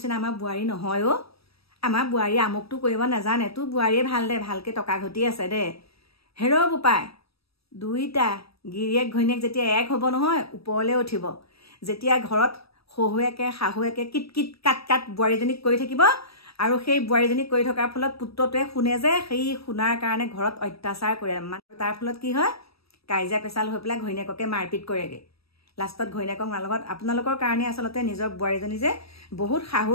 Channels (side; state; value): right; late; 0.77 ms